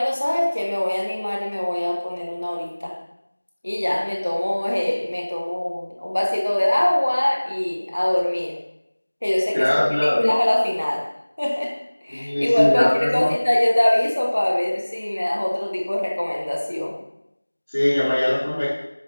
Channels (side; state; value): both; inverted; correlation -1.00